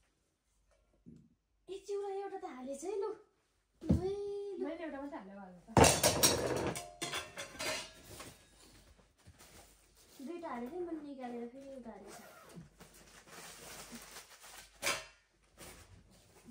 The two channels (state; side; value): identical; both; correlation 1.00